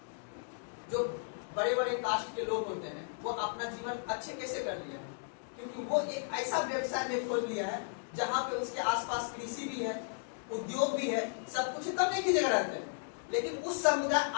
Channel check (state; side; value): silent; right; digital silence